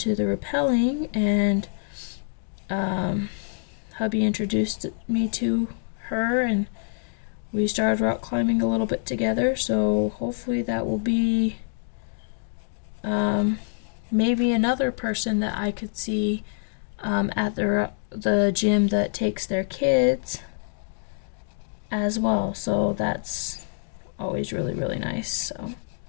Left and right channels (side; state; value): right; silent; digital silence